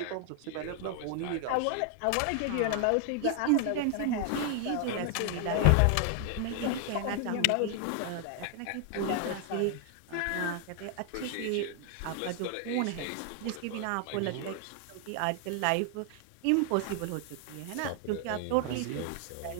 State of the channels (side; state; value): both; different; correlation 0.00